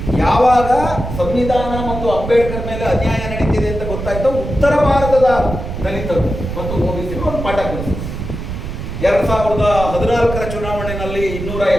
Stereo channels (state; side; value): noise; right; rumble, 6 dB below the sound